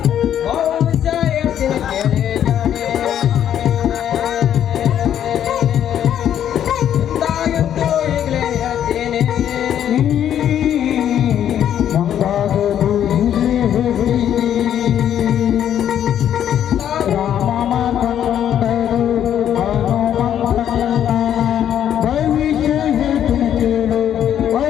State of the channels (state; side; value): quieter; right; 10.1 dB